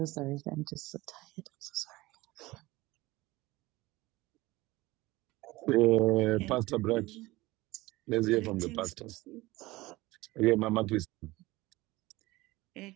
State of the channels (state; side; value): quieter; left; 19.8 dB